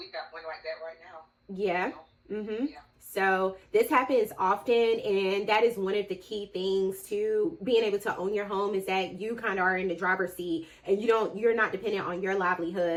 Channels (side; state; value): both; identical; correlation 1.00